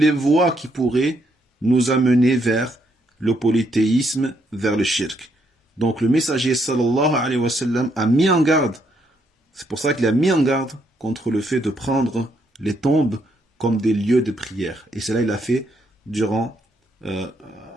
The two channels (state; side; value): normal; both; correlation 0.74